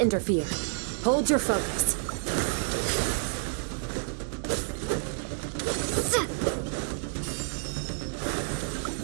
interfere. Hold your focus.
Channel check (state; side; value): silent; left; 58 dB below the other